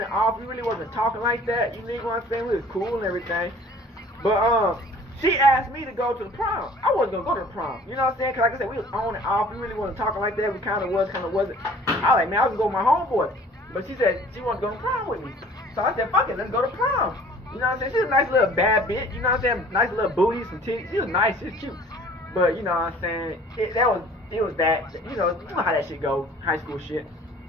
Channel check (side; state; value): both; normal; correlation 0.50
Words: off. We really wasn't talking like that. You know what I'm saying? We was cool and everything, but she asked me to go to the prom. I wasn't going to go to the prom. You know what I'm saying? Because like I said, we was on and off. We really wasn't talking like that. We kind of was, kind of wasn't. I was man, I was going to go with my homeboy. But she said she wanted to go to prom with me. So I said, fuck it, let's go to prom. You know what I'm saying? She's a nice little bad bitch. You know what I'm saying? Nice little booty, some titties. She was nice. She was cute. But you know what I'm saying? It was that. You know how that shit go. High school shit.